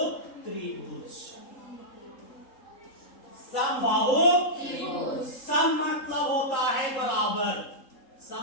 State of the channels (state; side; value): late; right; 3.8 ms